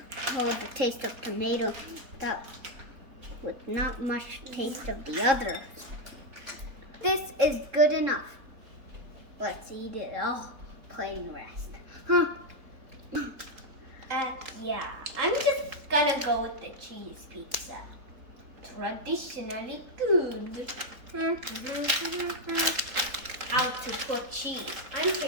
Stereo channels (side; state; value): left; late; 3.8 ms